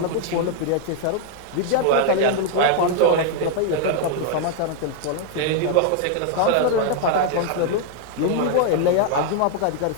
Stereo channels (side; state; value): both; different; correlation 0.00